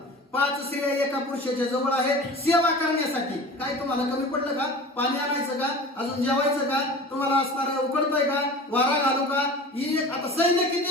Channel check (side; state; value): both; normal; correlation 0.38